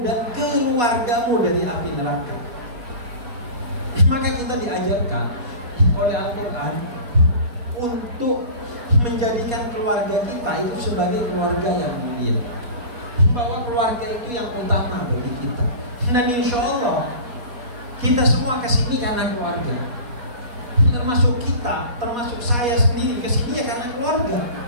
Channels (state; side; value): late; left; 4.2 ms